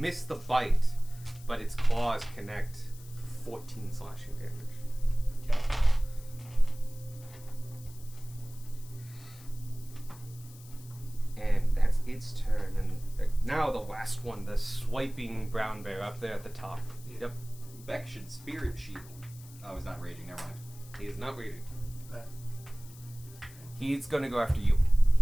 the bite, but its claws connect for 14 slashing damage. Yeah. And that's its turn. And now the last one, the swiping brown bear up there at the top. Yep. Beck should spirit shield. Oh, he's not raging. Never mind. He is not raging. That- He's gonna go after you.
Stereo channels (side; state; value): left; noise; hiss, 21 dB below the sound